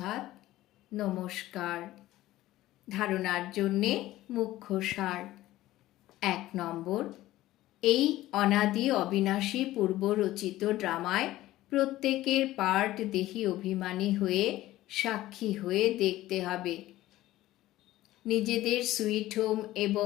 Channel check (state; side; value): quieter; right; 15.8 dB